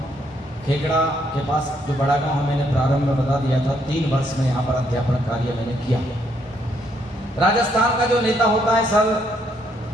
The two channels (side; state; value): both; normal; correlation 0.72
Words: खेकड़ा के पास जो बड़ा गांव है, मैंने प्रारंभ में बता दिया था। 3 वर्ष में यहाँ पर अध्यापन कार्य मैंने किया। राजस्थान का जो नेता होता है सर